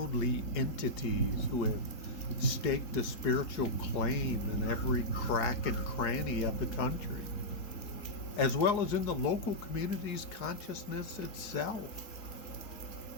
entities who have staked a spiritual claim in every crack and cranny of the country, as well as in the local community's consciousness itself.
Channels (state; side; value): late; right; 4.7 ms